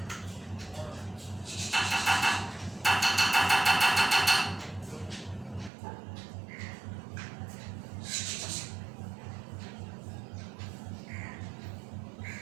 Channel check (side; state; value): left; drops out; at 5.7 s